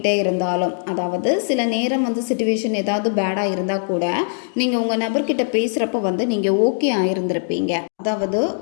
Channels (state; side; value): silent; right; digital silence